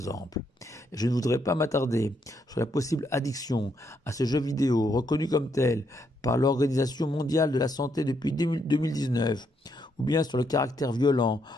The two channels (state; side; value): normal; both; correlation 0.76